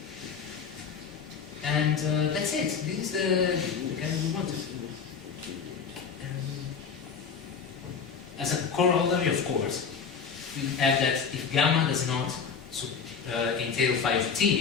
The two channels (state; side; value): quieter; right; 6.1 dB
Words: And that's it. This is the kind we wanted. As a corollary, of course, we add that if gamma does not entail phi of